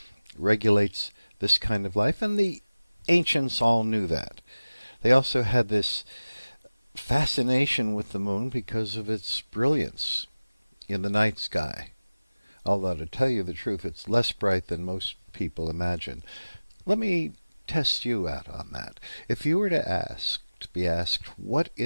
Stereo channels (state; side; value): inverted; both; correlation -0.99